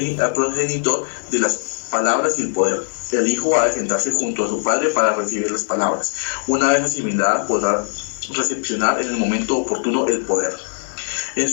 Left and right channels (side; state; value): right; silent; 64 dB below the other